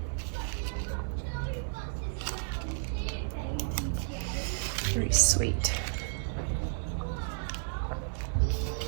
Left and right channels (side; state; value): left; silent; digital silence